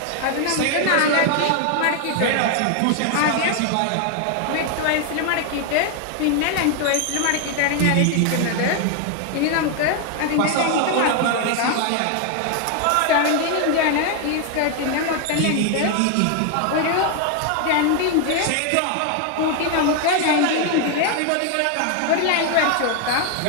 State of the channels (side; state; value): both; different; correlation 0.00